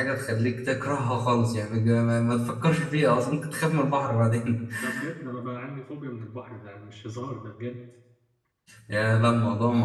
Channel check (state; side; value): identical; both; correlation 1.00